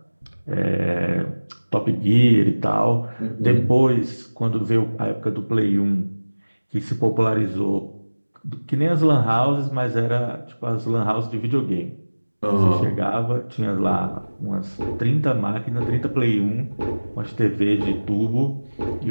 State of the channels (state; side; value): inverted; both; correlation -1.00